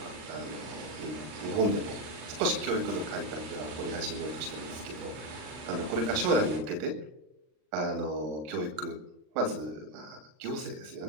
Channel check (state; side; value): late; left; 39 ms